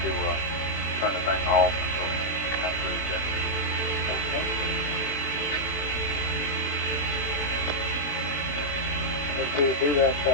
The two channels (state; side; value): late; right; 20 ms